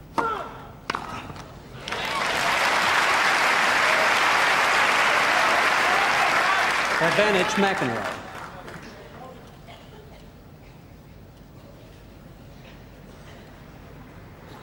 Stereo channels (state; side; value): identical; both; correlation 1.00